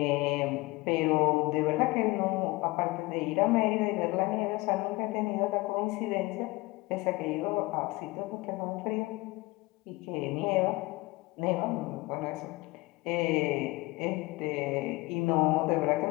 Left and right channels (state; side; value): quieter; right; 22.0 dB